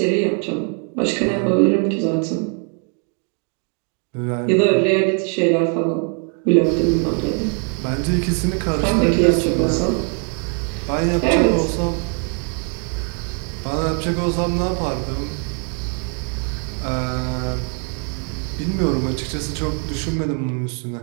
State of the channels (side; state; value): left; quieter; 39.8 dB